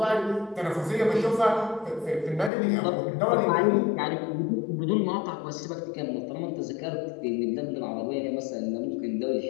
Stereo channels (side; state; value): right; drops out; at 2.5 s